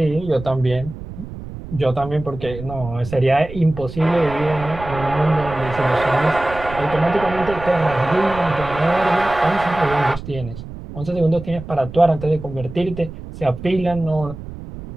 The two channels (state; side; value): noise; right; rumble, 12 dB below the sound